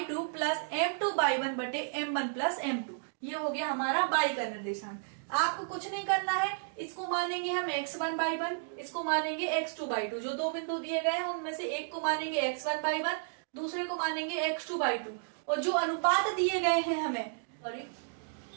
2 plus m2 by 1 बटे m1 प्लस m2, ये हो गया हमारा y का निर्देशांक। आपको कुछ नहीं करना है, इसको मानेंगे हम x1 बाई 1, इसको मानेंगे x2 बाई 2। जो दो बिंदु दिए गए हैं उनमें से एक को मानेंगे x1 बाई 1, दूसरे को मानेंगे x2 बाई 2। और जो अनुपात दिए गए हैं हमें,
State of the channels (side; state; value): left; silent; digital silence